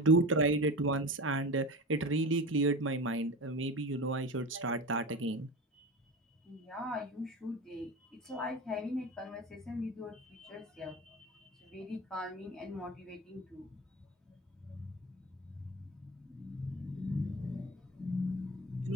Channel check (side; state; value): both; normal; correlation 0.28